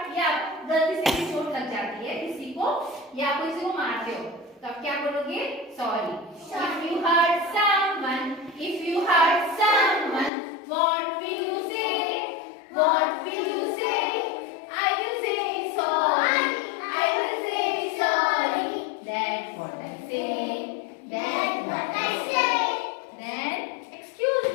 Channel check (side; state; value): right; drops out; at 10.3 s